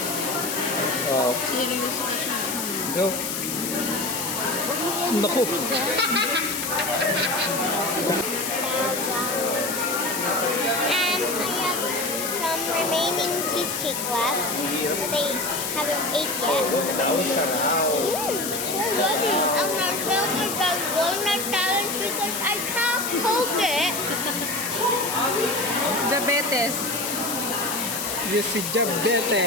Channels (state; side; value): noise; left; hiss, 3 dB below the sound